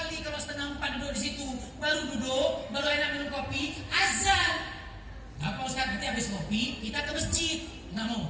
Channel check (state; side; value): identical; both; correlation 1.00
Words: kalau 3:30 duduk di situ. Baru duduk, baru enak minum kopi, azan. Apa Ustaz, nanti habis kopi kita ke masjid. Nggak mau,